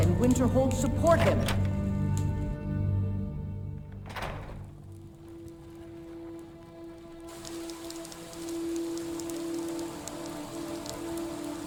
and Winterhold support him.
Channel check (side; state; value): both; identical; correlation 1.00